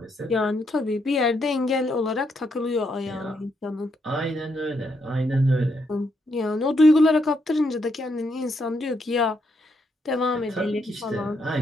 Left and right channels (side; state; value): both; normal; correlation 0.77